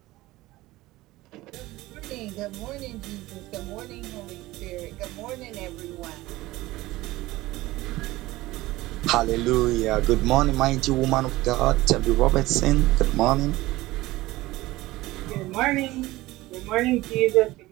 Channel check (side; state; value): left; quieter; 18.3 dB